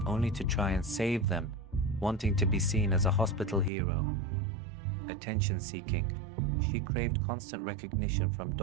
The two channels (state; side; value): drops out; left; at 3.7 s